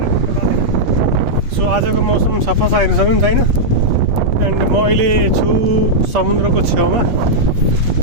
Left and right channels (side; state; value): left; late; 8.3 ms